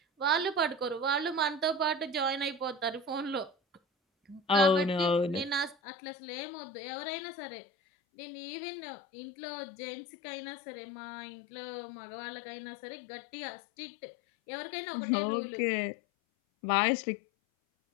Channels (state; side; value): drops out; right; at 5.8 s